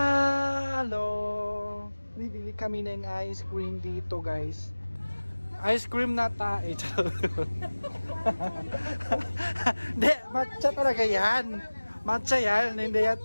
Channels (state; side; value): inverted; both; correlation -1.00